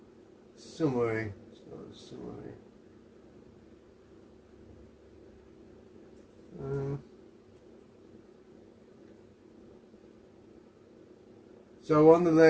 Summary. So on the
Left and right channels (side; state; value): both; identical; correlation 1.00